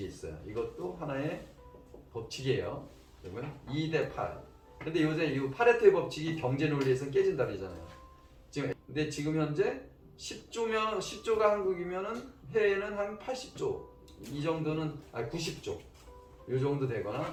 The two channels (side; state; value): both; identical; correlation 1.00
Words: 있어요. 이것도 하나의 법칙이에요. 그러면 2대 8. 근데 요새 이 파레토의 법칙이 경제 논리에서는 깨진다 그러잖아요. 근데 지금 현재 10조가 한국이면은 해외는 한 80조 이 정도는 90조 이 정도 되거나